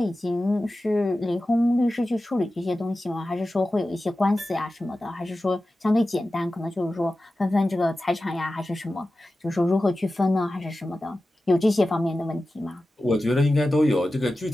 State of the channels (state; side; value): normal; both; correlation 0.94